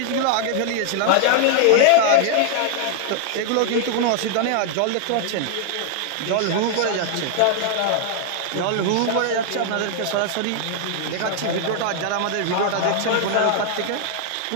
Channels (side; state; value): both; different; correlation 0.00